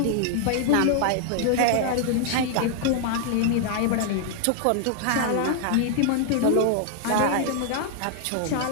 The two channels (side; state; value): both; different; correlation 0.00